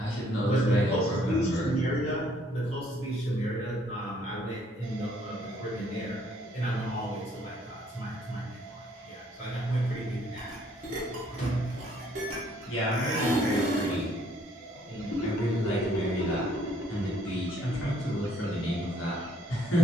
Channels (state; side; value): normal; both; correlation 0.64